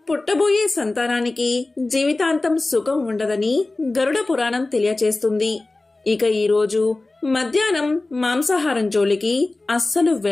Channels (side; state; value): right; quieter; 3.1 dB